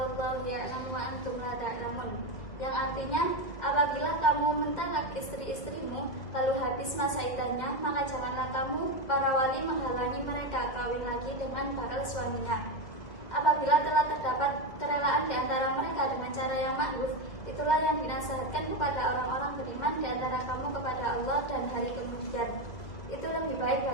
wallahu ya'lamu wa antum la ta'lamun. Yang artinya, apabila kamu mentalak istri-istrimu lalu habis masa iddahnya, maka janganlah kamu para wali menghalangi mereka kawin lagi dengan para suaminya. Apabila telah terdapat kerelaan di antara mereka dengan cara yang ma'ruf, itulah yang dinasihatkan kepada orang-orang beriman di antara kamu kepada Allah dan hari kemudian. Itu lebih baik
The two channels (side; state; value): right; late; 1.9 ms